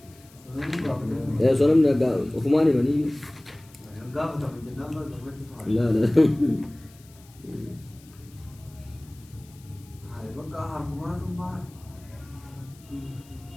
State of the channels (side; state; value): left; noise; hiss, 26 dB below the sound